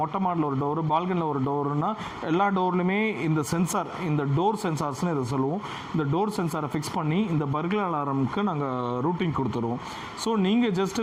மொட்டை மாடில் ஒரு டோரு, பால்கனியில் ஒரு டோருன்னா எல்லா டோர்லையுமே இந்த சென்சார், இந்த டோர் சென்சார்ஸ்னு இதை சொல்லுவோம், இந்த டோர் சென்சாரை ஃபிக்ஸ் பண்ணி இந்த பர்க்லர் அலாரமுக்கு நாங்கள் ரூட்டிங் கொடுத்துருவோம். ஸோ நீங்கள்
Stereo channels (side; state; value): both; identical; correlation 1.00